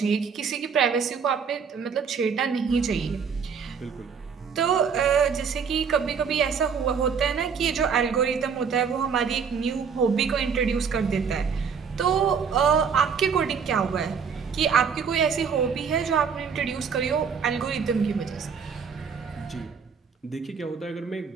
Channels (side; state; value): left; quieter; 6.3 dB